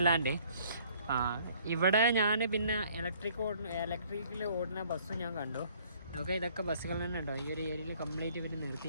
ഇവിടെ ഞാൻ പിന്നെ ഇലക്ട്രിക്കിൽ ഓടുന്ന ബസ്സും ഞാൻ കണ്ടു. ഓക്കെ, ഇതൊക്കെ ബസ്സുകൾ തന്നെ ഉണ്ടോ. ഈ ഒരു ഏരിയയിൽ കംപ്ലീറ്റ് ഇവർ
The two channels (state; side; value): inverted; both; correlation -0.59